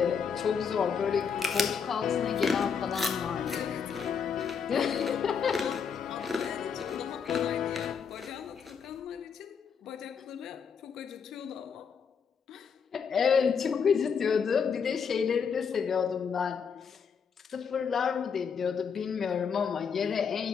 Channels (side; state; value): right; quieter; 6.4 dB